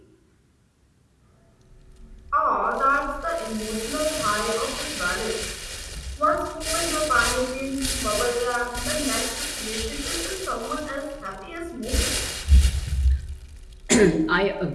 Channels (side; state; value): both; identical; correlation 1.00